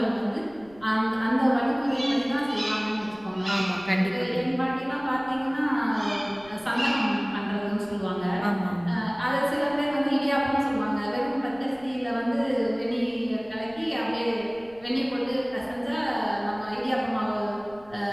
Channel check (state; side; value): noise; left; rumble, 25 dB below the sound